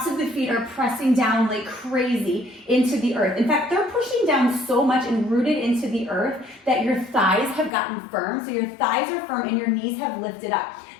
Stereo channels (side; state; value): right; drops out; at 7.7 s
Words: of the feet are pressing down like crazy into the earth. In fact, they're pushing down so much and rooted into the earth that your thighs have gotten firm. So your thighs are firm and your knees have lifted up.